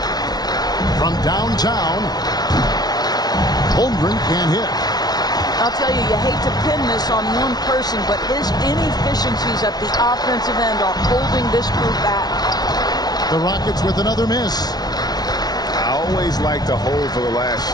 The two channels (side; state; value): right; late; 0.19 ms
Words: From downtown, Holmgren can't hit. I'll tell you, you hate to pin this on one person, but his inefficiencies at the offensive end are holding this group back. The Rockets with another miss. I always like to hold for the last